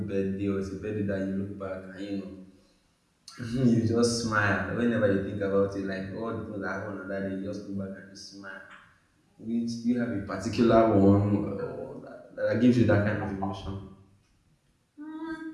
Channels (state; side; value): identical; both; correlation 1.00